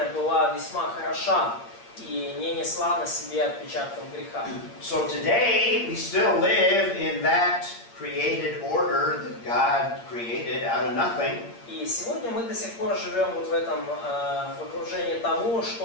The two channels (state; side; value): late; right; 8.6 ms